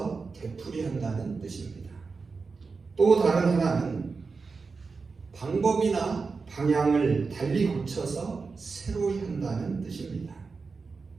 되풀이한다는 뜻입니다. 또 다른 하나는 방법이나 방향을 달리 고쳐서 새로이 한다는 뜻입니다.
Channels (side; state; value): left; quieter; 4.6 dB